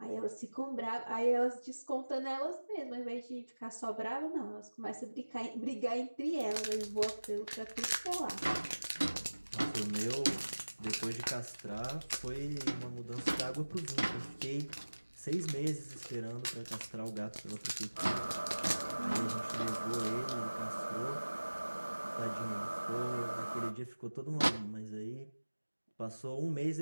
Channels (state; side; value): inverted; both; correlation -1.00